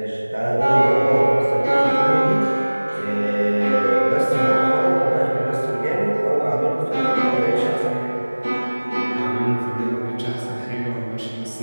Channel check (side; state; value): both; inverted; correlation -1.00